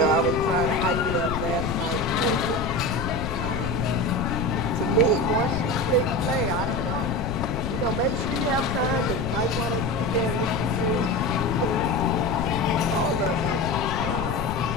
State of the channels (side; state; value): left; noise; rumble, 5 dB below the sound